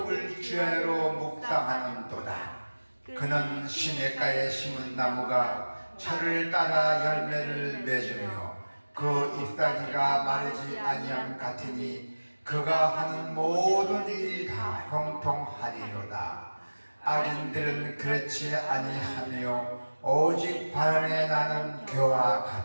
주야로 묵상하는도다. 그는 시냇가에 심은 나무가 철을 따라 열매를 맺으며 그 잎사귀가 마르지 아니함 같으니 그가 하는 모든 일이 다 형통하리로다. 악인들은 그렇지 아니하며 오직 바람에 나는 겨와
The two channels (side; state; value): both; inverted; correlation -1.00